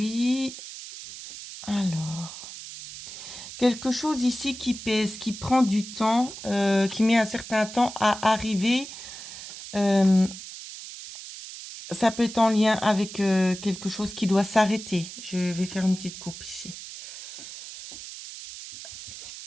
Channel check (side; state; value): right; noise; hiss, 12 dB below the sound